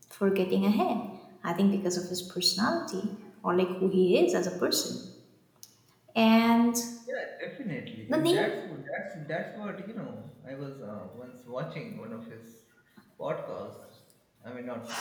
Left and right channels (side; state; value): both; identical; correlation 1.00